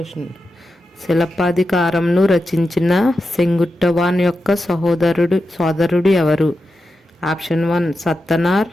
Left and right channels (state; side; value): normal; both; correlation 0.90